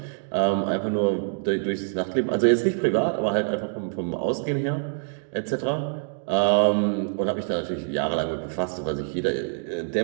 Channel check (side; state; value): left; silent; digital silence